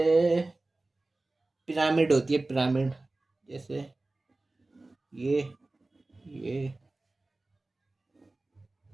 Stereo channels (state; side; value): quieter; left; 3.0 dB